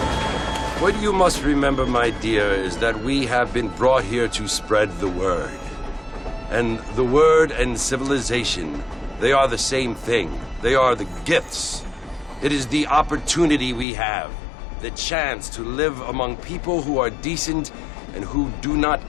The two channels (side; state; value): right; drops out; at 13.9 s